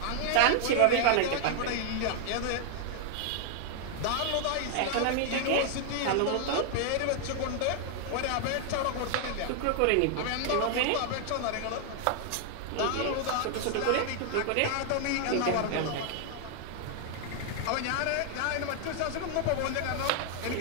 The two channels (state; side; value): different; both; correlation 0.00